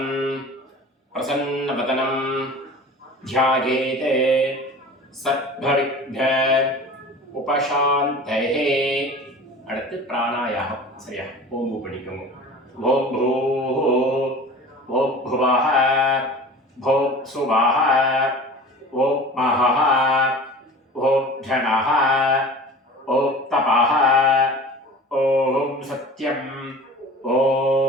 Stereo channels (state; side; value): normal; both; correlation 0.39